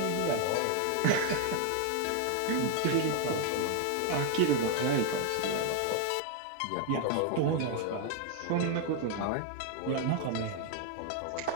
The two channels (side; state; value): both; different; correlation 0.00